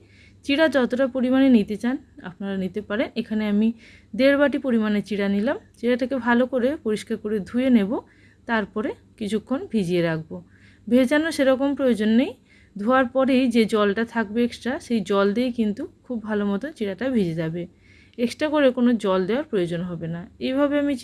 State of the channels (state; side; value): identical; both; correlation 1.00